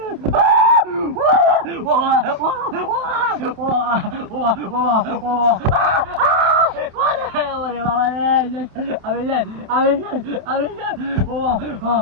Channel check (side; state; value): left; late; 28 ms